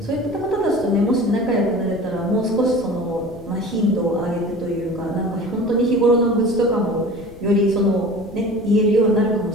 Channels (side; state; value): left; noise; rumble, 20 dB below the sound